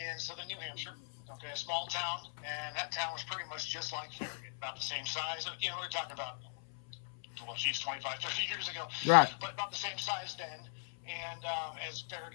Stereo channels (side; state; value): right; silent; 52 dB below the other